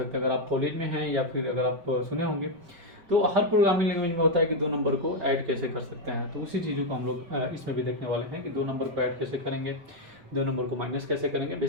हैं। अगर आप कॉलेज में हैं या फिर अगर आप सुने होंगे, तो हर प्रोग्रामिंग लैंग्वेज में होता है कि दो नंबर को ऐड कैसे कर सकते हैं। तो उसी चीज़ों को हम लोग इसमें भी देखने वाले हैं कि दो नंबर को ऐड कैसे करेंगे, दो नंबर को माइनस कैसे करेंगे।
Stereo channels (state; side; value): late; left; 5.2 ms